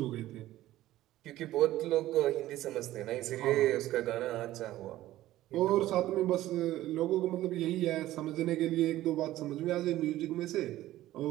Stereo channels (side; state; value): left; quieter; 15.0 dB